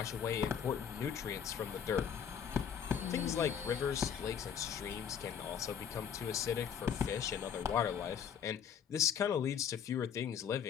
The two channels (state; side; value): quieter; right; 8.0 dB